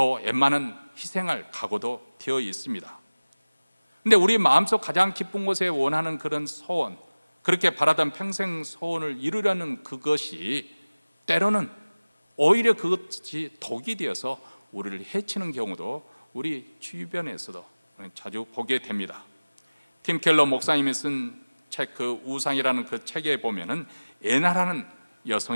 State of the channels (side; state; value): both; inverted; correlation -1.00